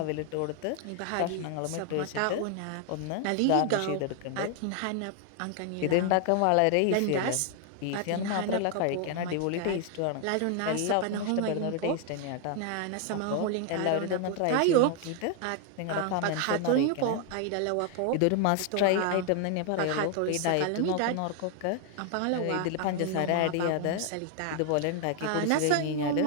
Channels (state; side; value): different; both; correlation 0.00